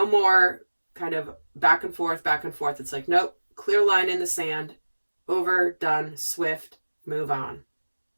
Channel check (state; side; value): inverted; both; correlation -1.00